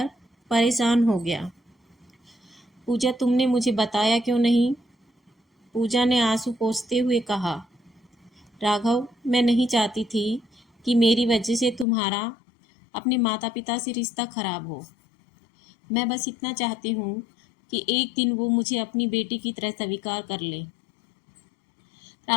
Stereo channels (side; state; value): right; drops out; at 11.9 s